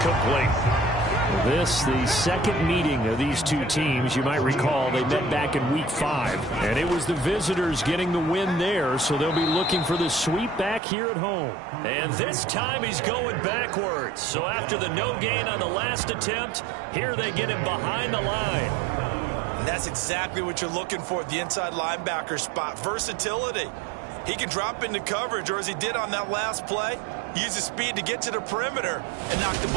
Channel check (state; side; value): drops out; left; at 10.8 s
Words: This, the second meeting of these two teams. You might recall they met back in Week 5. And it was the visitors getting the win there, so they'll be looking for the sweep back here at home. And this time he's going backwards. So after the no gain on the last attempt, here they get him behind the line. And that's exactly what you're looking for at the inside linebacker spot. Versatility. He can drop into coverage, or as he did on that last play, use his speed to get to the perimeter and knock the